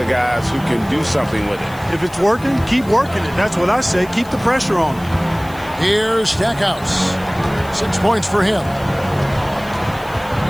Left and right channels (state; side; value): noise; left; hiss, 22 dB below the sound